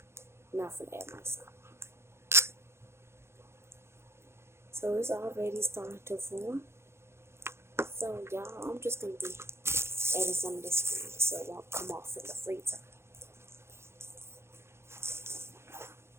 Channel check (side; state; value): left; late; 0.12 ms